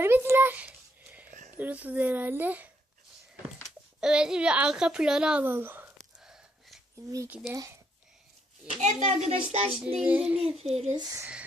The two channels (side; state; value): both; normal; correlation 0.74